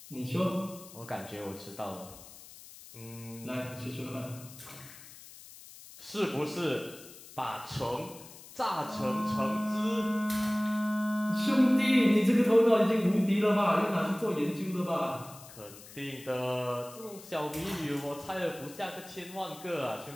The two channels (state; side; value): noise; left; hiss, 18 dB below the sound